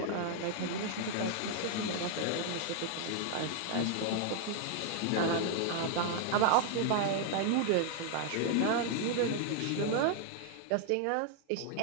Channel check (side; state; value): both; different; correlation 0.00